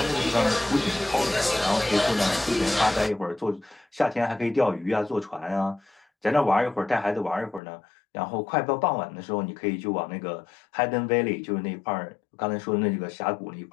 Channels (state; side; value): drops out; right; at 7.6 s